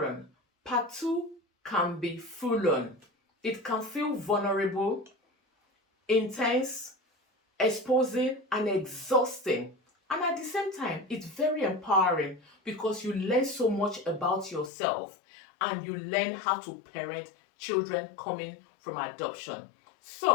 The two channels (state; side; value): drops out; right; at 14.7 s